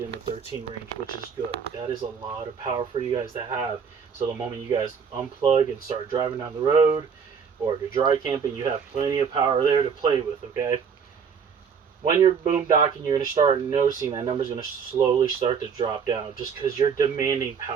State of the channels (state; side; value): quieter; left; 6.5 dB